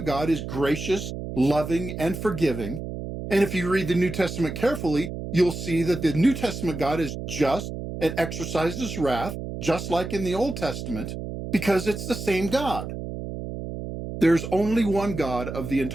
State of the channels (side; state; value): right; noise; hum, 7 dB below the sound